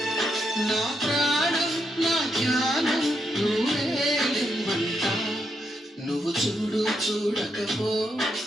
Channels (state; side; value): normal; both; correlation 0.80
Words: నా ప్రాణం నా జ్ఞానం నువ్వేలిమ్మంటా. నువ్వు చూడు చూడకపో,